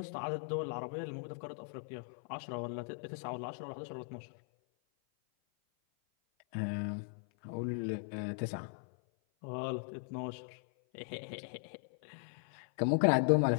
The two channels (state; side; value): silent; right; 52 dB below the other